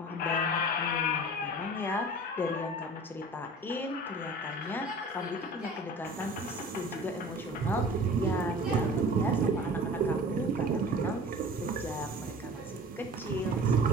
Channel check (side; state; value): both; normal; correlation 0.41